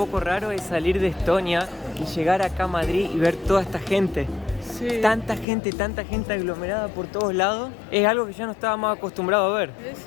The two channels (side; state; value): right; drops out; at 5.5 s